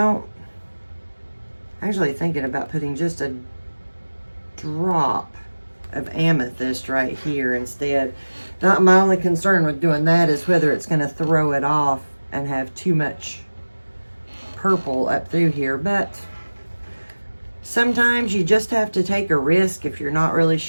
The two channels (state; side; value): inverted; both; correlation -1.00